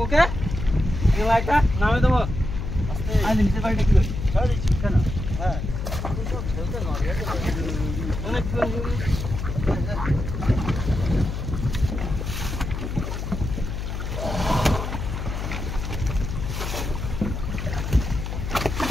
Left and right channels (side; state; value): left; noise; hum, 5 dB below the sound